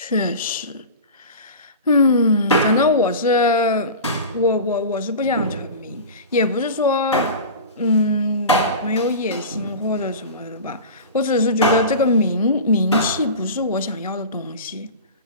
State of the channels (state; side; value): inverted; both; correlation -0.32